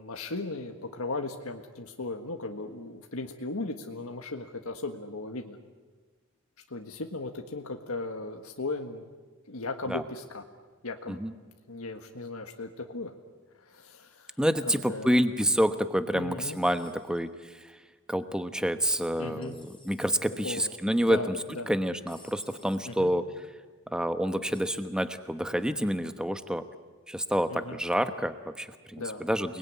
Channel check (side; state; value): both; normal; correlation 0.67